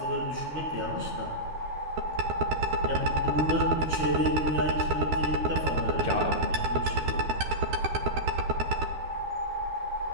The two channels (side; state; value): left; late; 13 ms